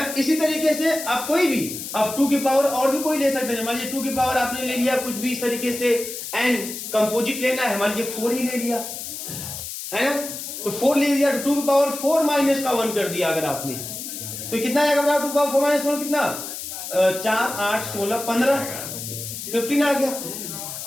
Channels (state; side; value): noise; left; hiss, 8 dB below the sound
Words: इसी तरीके से आप कोई भी, अब 2 के पावर और भी कोई ले सकते हैं। मान लीजिए 2 के पावर आपने ले लिया कुछ भी इस तरीके से, n कंपोजिट लेना है, मान लीजिए 4 ही ले लिया, है ना, तो 4 ले लिया, 2 के पावर 4 माइनस का 1 कर दिया अगर आपने, तो कितना आएगा? 2 के पावर 4 माइनस 1 कितना? 4 8 16 15 15 आ गया।